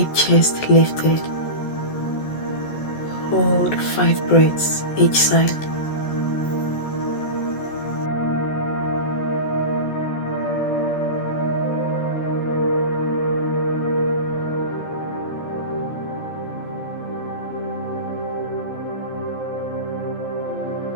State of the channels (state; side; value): late; right; 14 ms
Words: chest lifted. Hold 5 breaths each side.